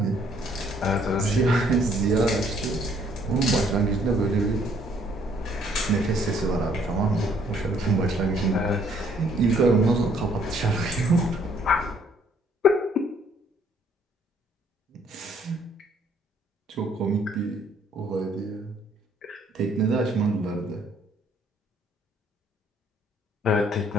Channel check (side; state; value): both; normal; correlation 0.64